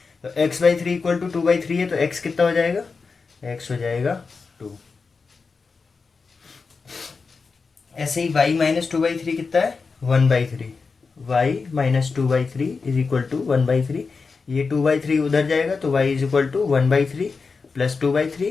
तो x/3 इक्वल टू 2/3 है, तो x कितना हो जाएगा? x हो जाएगा 2। ऐसे ही y - 2/3 कितना है? 1/3। y - 2/3 is equal to 1/3। ये 2/3 उधर जाएगा तो y इज इक्वल टू 1/3 +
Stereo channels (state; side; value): quieter; right; 4.7 dB